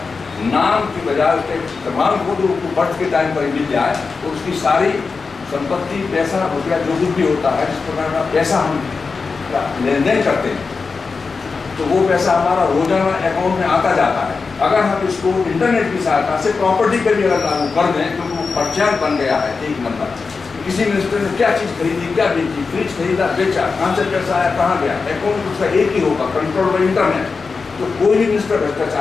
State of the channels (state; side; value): quieter; right; 4.6 dB